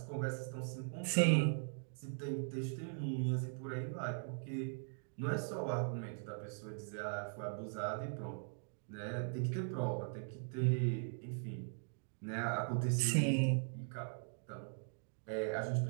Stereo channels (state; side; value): silent; left; digital silence